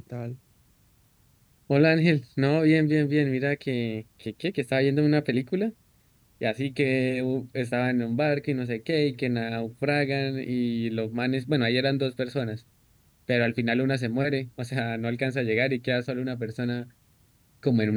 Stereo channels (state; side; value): identical; both; correlation 1.00